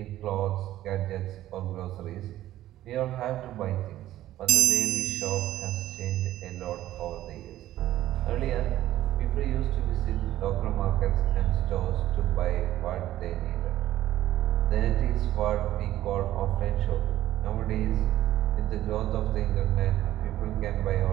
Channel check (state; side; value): quieter; left; 13.9 dB